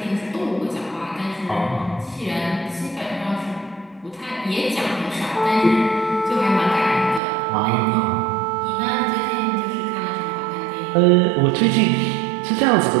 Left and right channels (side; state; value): left; drops out; at 7.2 s